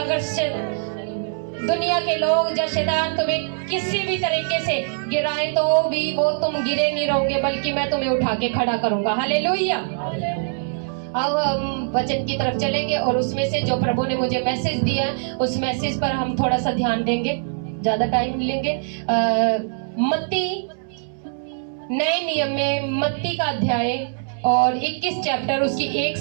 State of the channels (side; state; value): left; silent; digital silence